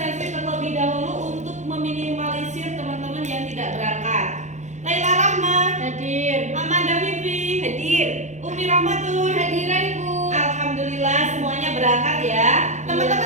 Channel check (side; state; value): left; late; 0.34 ms